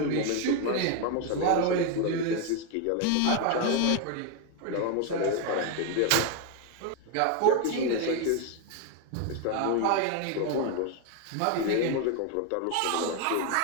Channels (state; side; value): different; both; correlation 0.01